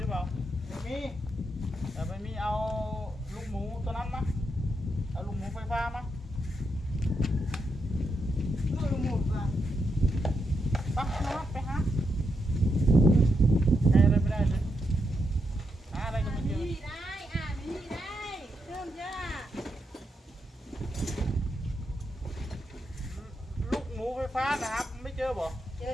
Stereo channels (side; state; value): both; normal; correlation 0.83